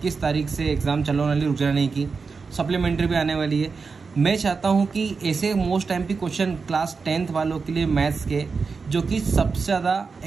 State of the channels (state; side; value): quieter; left; 4.8 dB